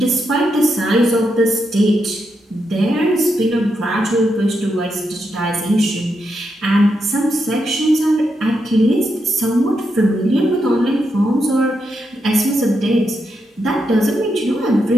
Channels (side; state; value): both; normal; correlation 0.83